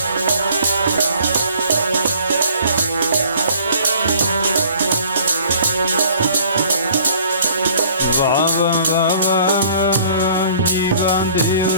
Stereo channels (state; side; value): inverted; both; correlation -0.54